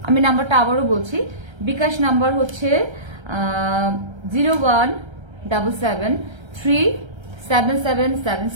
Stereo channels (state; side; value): late; left; 1.3 ms